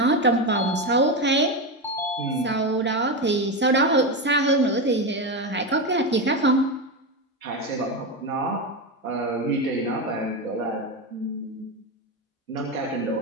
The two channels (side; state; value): both; normal; correlation 0.14